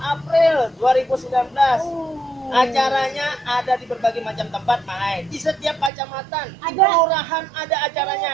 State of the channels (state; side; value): drops out; left; at 5.9 s